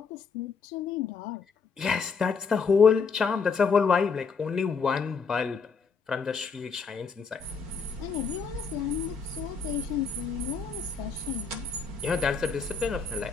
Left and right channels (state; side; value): quieter; right; 5.3 dB